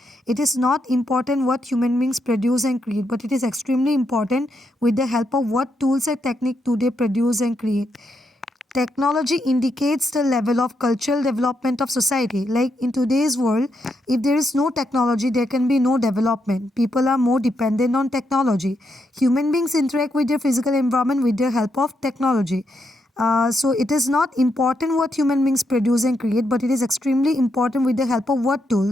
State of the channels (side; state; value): both; normal; correlation 0.80